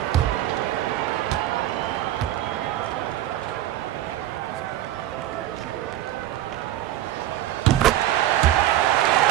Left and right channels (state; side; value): quieter; left; 13.4 dB